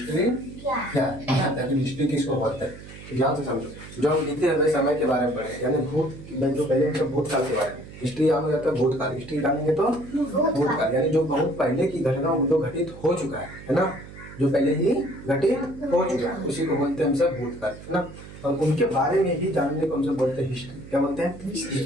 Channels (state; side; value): noise; right; hum, 16 dB below the sound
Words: क्या है ना? आखिर हिस्ट्री किसको बोलते हैं? तो ध्यान से समझो। जो हम बीते हुए समय के बारे में पढ़े यानी जो पहले हम भूतकाल के बारे में। हिस्ट्री यानी जाता है भूतकाल। हिस्ट्री जानेंगे तो भूतकाल यानी जो बहुत पहले की घटना जो घटित हो चुका है ना, जो पहले ही घटित हो चुका है उसी को बोलते हैं हम सब भूतकाल है ना। और उनके बारे में ही जानने को हम सब बोलते हैं हिस्ट्री। क्या बोलते हैं?